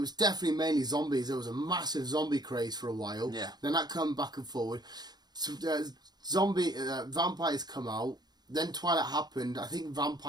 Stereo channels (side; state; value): left; late; 0.20 ms